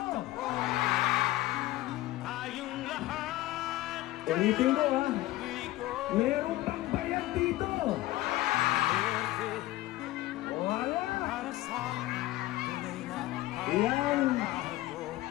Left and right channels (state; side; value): quieter; right; 17.0 dB